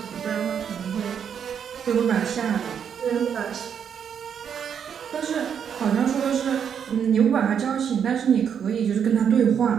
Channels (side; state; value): left; quieter; 7.9 dB